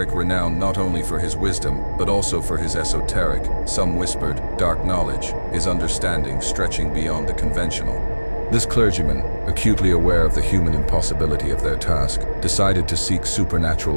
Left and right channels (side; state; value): both; inverted; correlation -1.00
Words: renowned not only for his wisdom, but also for his esoteric, some whispered, dark knowledge, his understanding stretching beyond the conventional. This clergyman, acutely aware of the human impossibility of their task, decided to seek